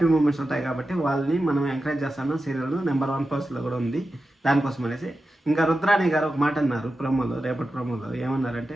మూమెంట్స్ ఉంటాయి కాబట్టి వాళ్ళని మనం ఎంకరేజ్ చేస్తాను. సీరియల్ నెంబర్ 1 పోస్ట్లో కూడా ఉంది దానికోసం అనేసి. ఇంకా రుద్రాణి గారు ఒక మాట అన్నారు ప్రోమోలో, రేపటి ప్రోమోలో ఏమన్నారంటే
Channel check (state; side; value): normal; both; correlation 0.92